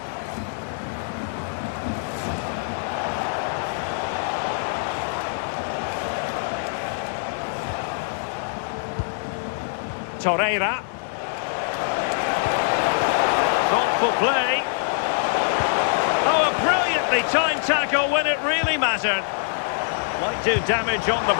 Torreira. Thoughtful play. Oh, a brilliantly timed tackle when it really mattered. Might do damage on the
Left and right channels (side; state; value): right; silent; digital silence